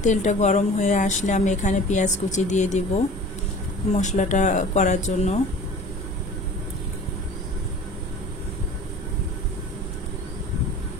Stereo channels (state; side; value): normal; both; correlation 0.42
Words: তেলটা গরম হয়ে আসলে আমি এখানে পেঁয়াজ কুচি দিয়ে দিব মশলাটা করার জন্য।